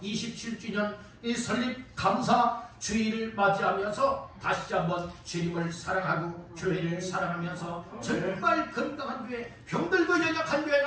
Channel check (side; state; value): both; identical; correlation 1.00